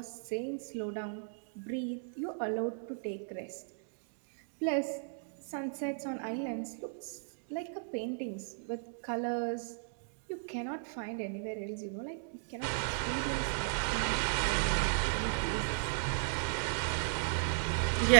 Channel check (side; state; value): left; silent; digital silence